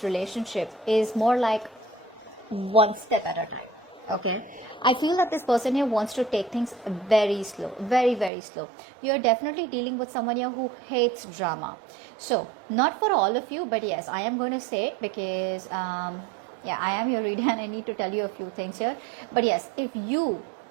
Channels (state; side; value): drops out; left; at 8.3 s